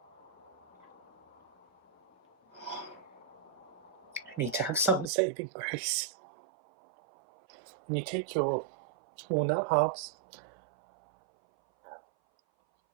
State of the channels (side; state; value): left; drops out; at 5.1 s